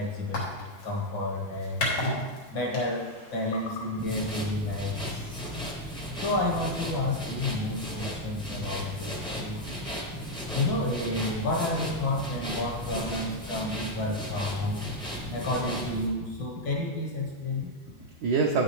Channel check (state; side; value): normal; both; correlation -0.01